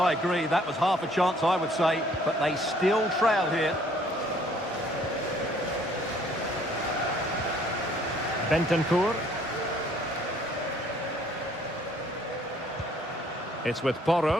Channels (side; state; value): both; normal; correlation 0.61